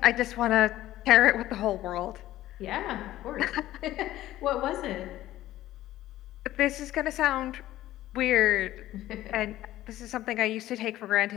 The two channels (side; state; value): right; quieter; 14.7 dB